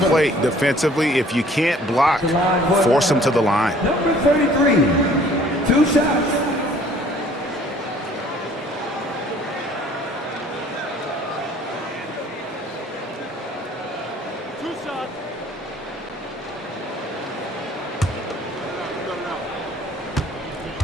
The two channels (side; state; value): both; normal; correlation 0.55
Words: defensively. If you can't block, force them to the line. Number 33, 2 shots.